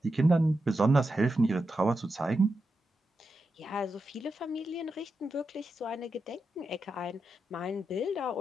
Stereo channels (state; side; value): normal; both; correlation 0.88